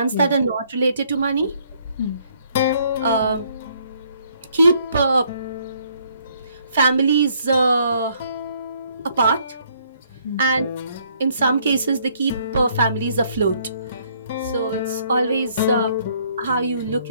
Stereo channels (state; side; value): inverted; both; correlation -0.66